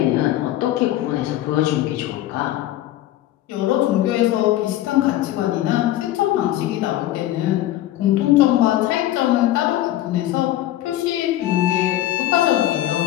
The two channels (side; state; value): right; quieter; 14.2 dB